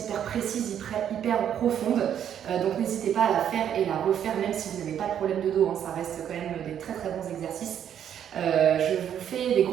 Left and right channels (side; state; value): left; quieter; 9.4 dB